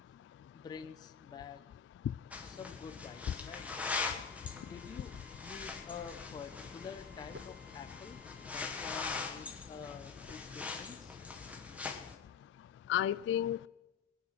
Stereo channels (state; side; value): quieter; right; 6.8 dB